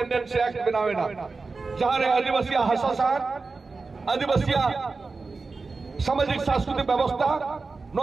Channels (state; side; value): quieter; left; 4.1 dB